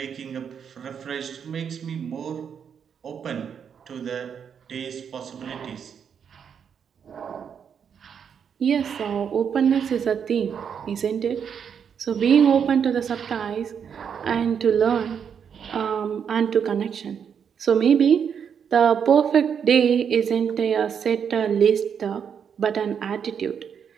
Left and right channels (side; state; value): left; quieter; 7.5 dB